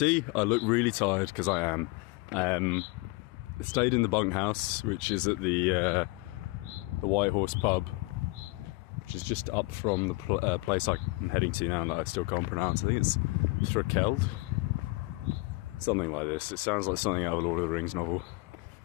I look really tired because I am. I stayed in the bunkhouse, which is at the White Horse pub, which is just up from the place I'm heading to now that I still can't pronounce. I think it's Thrakeld, something like this. It sounds like something out of a Lord of the Rings novel.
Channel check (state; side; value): quieter; right; 24.3 dB